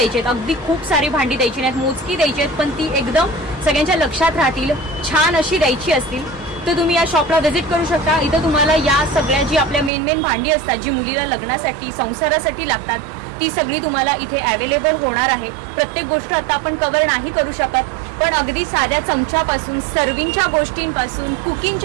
आहेत, अगदी खूप सारी भांडी द्यायची नाहीत, मोजकी द्यायची आहेत, पण ती एकदम सगळ्यांच्या लक्षात राहतील, छान अशी द्यायची असतील, तर तुम्ही या शॉपला व्हिजिट करू शकता. इथं तुम्हाला या सगळ्या जी आपल्या मेन भांडी असतात, जी मुलीला लग्नासाठी संसारासाठी लागतात, ती सगळी तुम्हाला इथे अवेलेबल होणार आहे. प्रत्येक गोष्ट आता आपण कव्हर नाही करू शकत, पण अगदी साध्या चमच्यापासून, सर्विंगच्या गोष्टींपासून,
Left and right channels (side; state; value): left; drops out; at 9.9 s